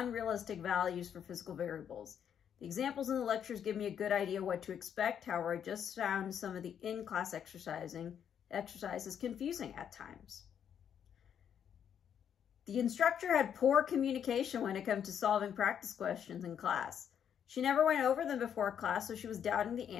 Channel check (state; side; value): quieter; right; 8.6 dB